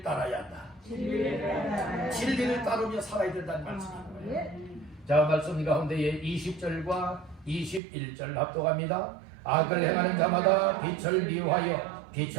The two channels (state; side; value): drops out; left; at 7.8 s